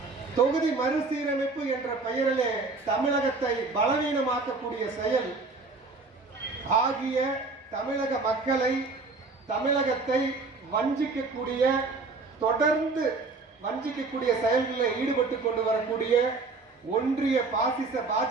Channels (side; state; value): left; quieter; 3.8 dB